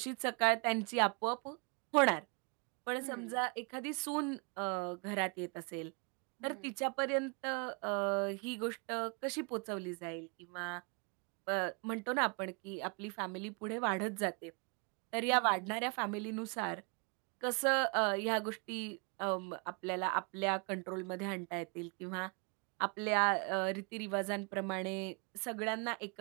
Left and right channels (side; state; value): left; quieter; 35.4 dB